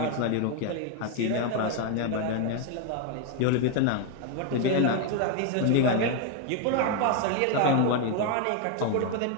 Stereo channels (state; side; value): different; both; correlation 0.01